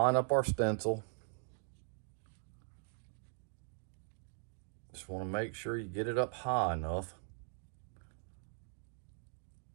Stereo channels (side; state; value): left; silent; 51 dB below the other